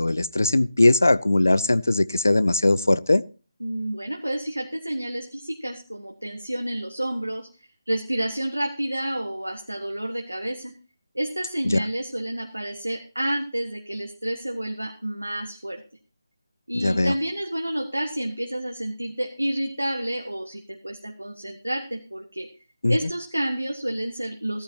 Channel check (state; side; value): inverted; both; correlation -0.94